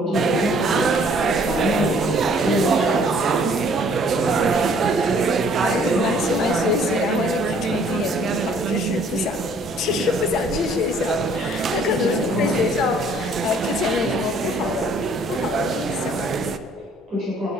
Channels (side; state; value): both; normal; correlation 0.59